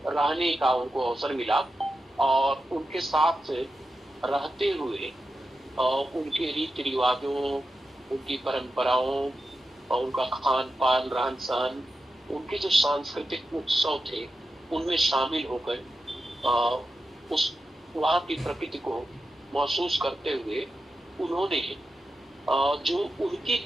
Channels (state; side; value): normal; both; correlation 0.90